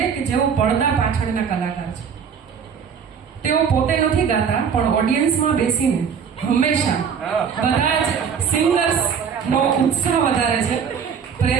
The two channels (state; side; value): quieter; left; 6.9 dB